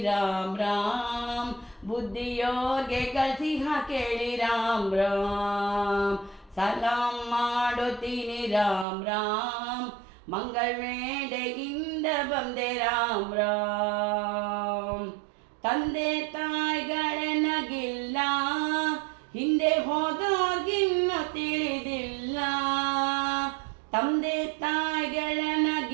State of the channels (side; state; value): left; drops out; at 8.8 s